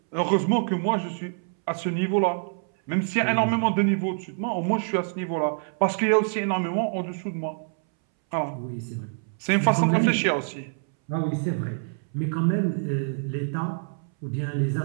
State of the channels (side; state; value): left; silent; 61 dB below the other